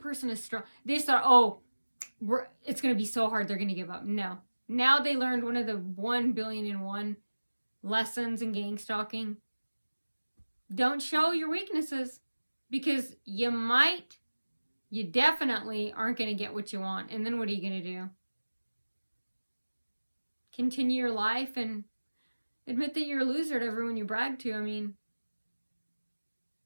is strong? They just thought, oh, it's going to be so hard they're going to give up. No. Now they learned one of the 1,000,000,001 lessons in gang stalking. Don't show your weaknesses, because you definitely aren't going to get what you want. And then what are you going to do? Continue your life, and Admit that you're a loser to everyone you brag to. I mean,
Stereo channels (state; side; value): inverted; both; correlation -1.00